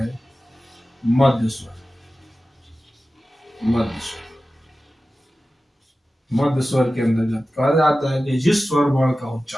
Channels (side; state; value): both; normal; correlation 0.95